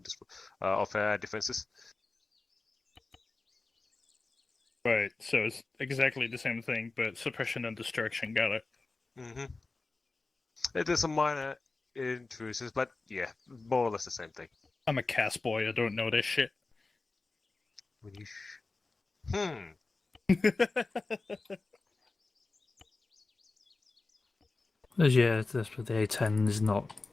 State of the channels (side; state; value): right; quieter; 3.6 dB